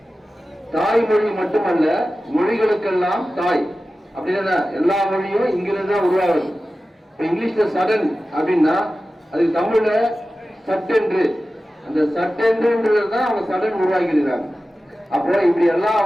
தாய்மொழி மட்டுமல்ல, மொழிகளுக்கெல்லாம் தாய். அப்படின்னா எல்லா மொழியும் இங்கிருந்து தான் உருவாகுது. இப்ப இங்கிலீஷ்ல சடன் அப்படின்னா அது தமிழ்ல சட்டென்று, அந்த சட்டென்றுன்றதுதான் அவங்க சடன் உருவாக்கியிருக்காங்க. அப்போ இப்படி எல்லா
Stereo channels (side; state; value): both; normal; correlation 0.95